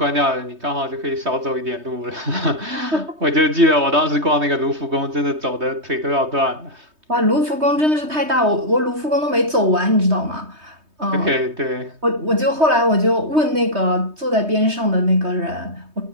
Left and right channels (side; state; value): left; late; 3.2 ms